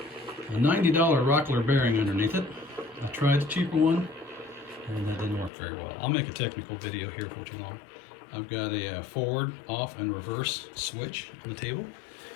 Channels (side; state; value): right; drops out; at 5.5 s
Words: $90 Rockler bearing underneath it. I tried the cheaper one and that didn't work very well. I'll make a technical video here for tomorrow. I've got a forward, off, and reverse switch on the table.